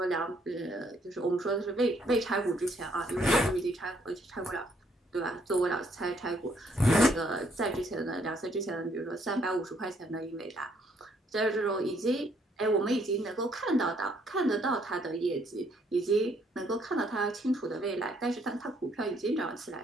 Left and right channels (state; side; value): normal; both; correlation 0.68